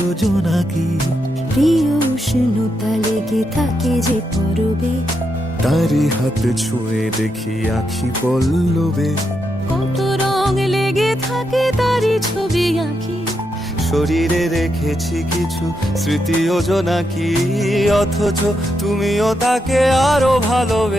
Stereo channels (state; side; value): normal; both; correlation 0.83